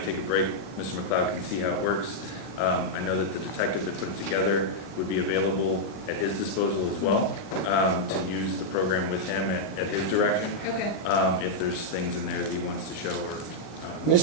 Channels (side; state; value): right; late; 38 ms